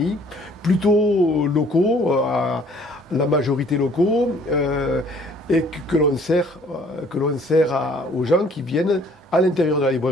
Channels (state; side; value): normal; both; correlation 0.58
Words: plutôt locaux, à la majorité locaux, et que l'on sert aux gens qui viennent à l'intérieur de la